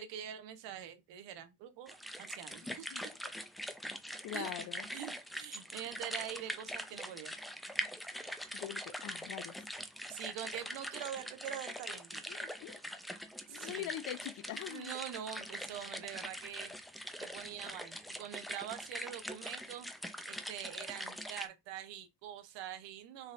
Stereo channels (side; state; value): both; normal; correlation 0.46